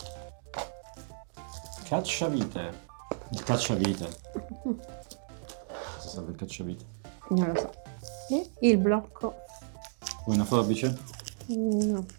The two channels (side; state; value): left; silent; digital silence